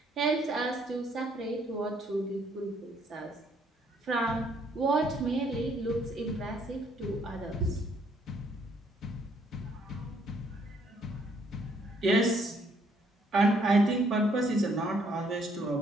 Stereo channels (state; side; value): normal; both; correlation 0.67